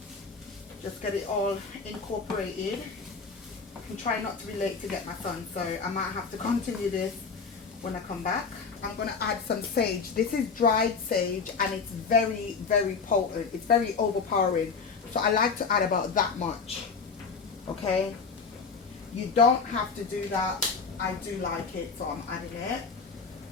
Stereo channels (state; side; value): quieter; right; 5.1 dB